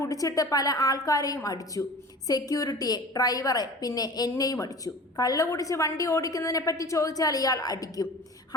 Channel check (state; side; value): normal; both; correlation 0.38